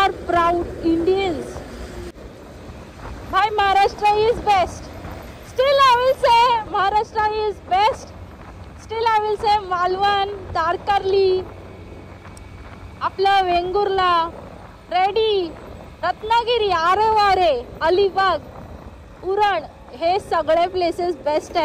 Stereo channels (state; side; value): identical; both; correlation 1.00